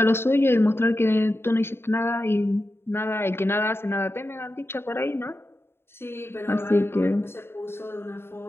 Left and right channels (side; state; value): right; late; 0.11 ms